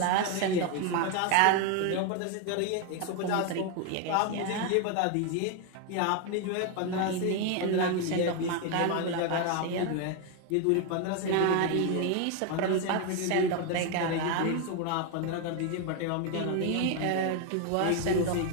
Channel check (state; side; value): different; both; correlation 0.01